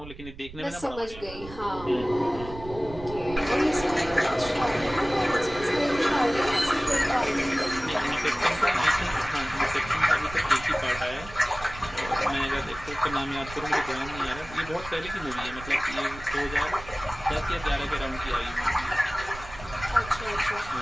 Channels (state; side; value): noise; right; rumble, 14 dB below the sound